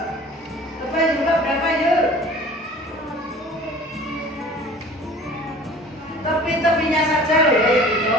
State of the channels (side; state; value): both; normal; correlation 0.45